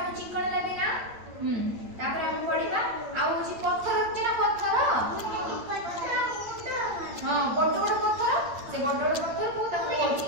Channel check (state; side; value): late; left; 8.8 ms